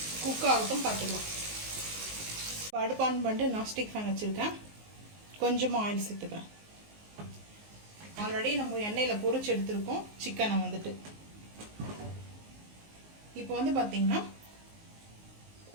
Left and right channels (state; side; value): late; left; 19 ms